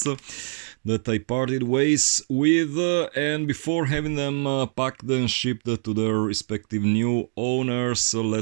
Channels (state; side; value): silent; left; digital silence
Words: that I parted ways with, and before having them packed and shipped to their respective new owners,